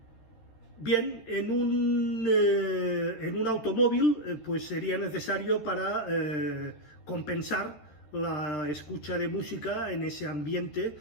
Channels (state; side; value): late; right; 13 ms